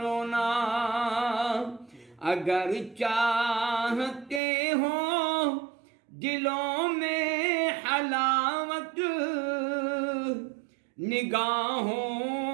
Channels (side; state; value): left; drops out; at 4.4 s